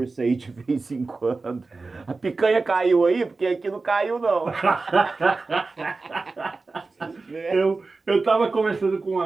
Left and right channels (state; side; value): quieter; left; 3.8 dB